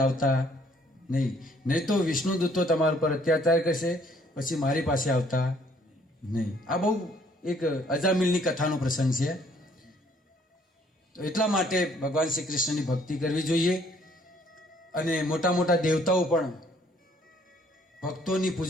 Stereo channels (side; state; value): both; normal; correlation 0.62